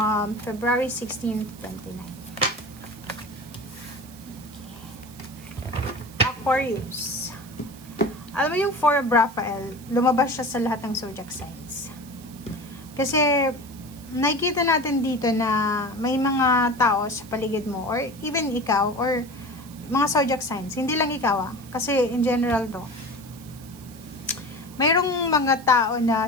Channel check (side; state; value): right; noise; hiss, 21 dB below the sound